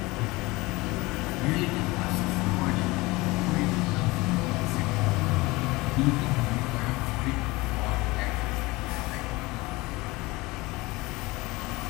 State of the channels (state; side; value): quieter; right; 22.1 dB